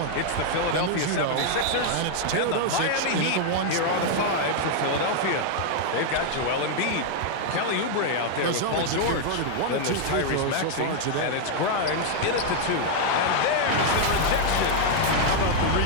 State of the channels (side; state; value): both; different; correlation 0.00